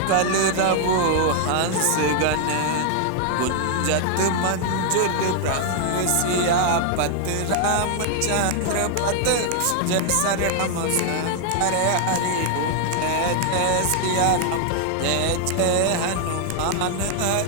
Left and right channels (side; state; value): both; different; correlation 0.00